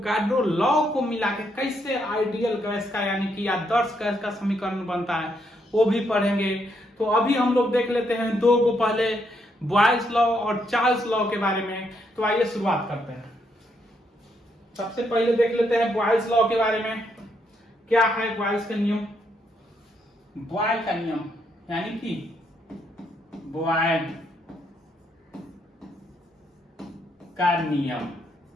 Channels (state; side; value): normal; both; correlation 0.76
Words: लॉ को मिला के कैसे आइडियल गैस का यानी कि आदर्श गैस का समीकरण बनता है वो भी पढ़ेंगे। तो अभी हम लोग देख लेते हैं दो को, पहले बॉयल्स लॉ और चार्ल्स लॉ के बारे में। तो आइए शुरुआत करते हैं। सबसे पहले देख लेते हैं बॉयल्स लॉ के बारे में। क्या है बॉयल्स का नियम? बॉयल का नियम यानी कि बॉयल का नियम,